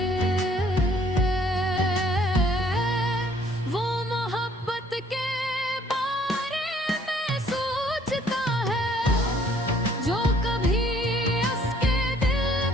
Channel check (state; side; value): normal; both; correlation 0.60